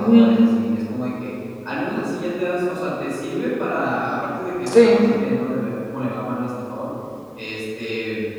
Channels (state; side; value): identical; both; correlation 1.00